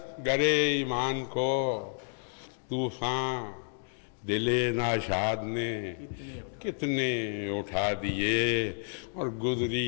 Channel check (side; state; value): right; silent; 56 dB below the other